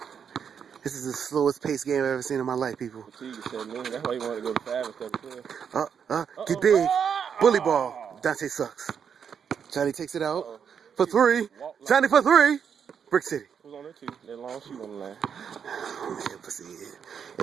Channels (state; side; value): quieter; left; 7.3 dB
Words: This is the slowest paced game I've ever seen in my life, people. That's why you wanted to go to 5 instead of 12. Get big. Bully ball. Dante sucks. Johnny takes it out for 3. Johnny for 3. Brick City. Who's on there too? That long shoot on the line. Man, pussy.